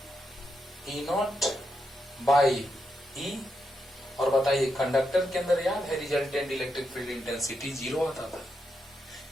E0/E, और बताइए कंडक्टर के अंदर याद है रिजल्टेंट इलेक्ट्रिक फील्ड इंटेंसिटी 0 आता था।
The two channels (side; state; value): both; normal; correlation 0.83